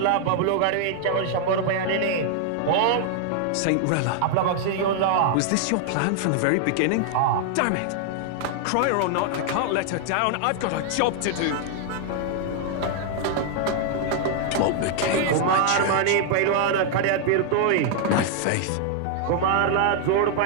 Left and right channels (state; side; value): different; both; correlation 0.00